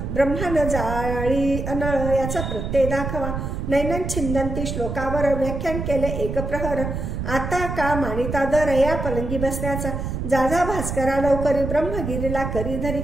ब्रह्मान जाळी अनळ याचा प्रत्यय दाखवा. नैनन छिंदंती श्लोकावर व्याख्यान केले 1 प्रहर. आता का मानिता दर या पलंगी बसण्याचा. जाजा भास्करा लवकरी ब्रह्मगिरीला करी धरी.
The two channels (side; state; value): right; noise; rumble, 4 dB below the sound